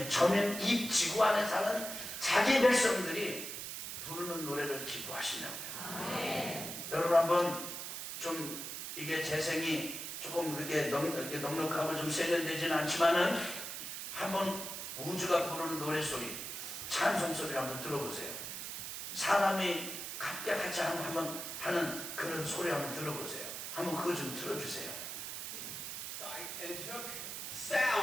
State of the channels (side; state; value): right; noise; hiss, 6 dB below the sound